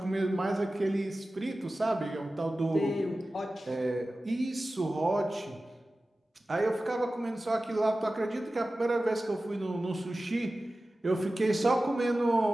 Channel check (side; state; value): both; normal; correlation 0.95